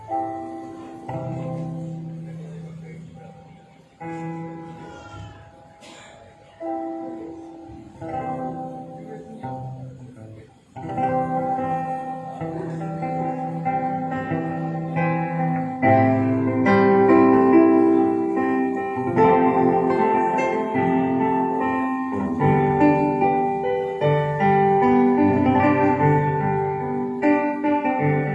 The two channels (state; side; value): identical; both; correlation 1.00